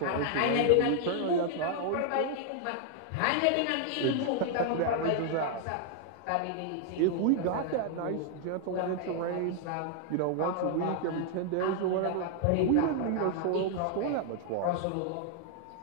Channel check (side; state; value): both; different; correlation 0.00